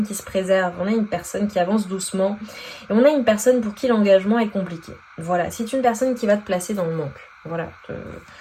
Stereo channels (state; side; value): identical; both; correlation 1.00